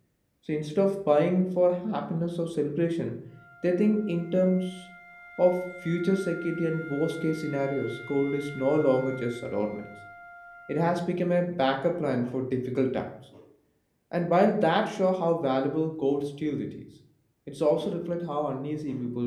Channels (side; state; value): both; identical; correlation 1.00